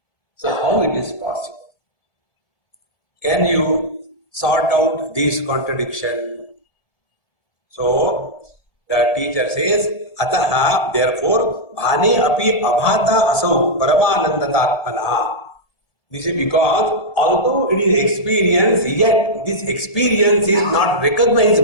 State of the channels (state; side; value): late; right; 1.7 ms